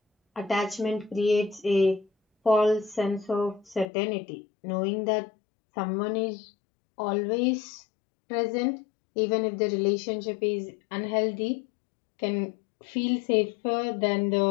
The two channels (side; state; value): right; drops out; at 3.9 s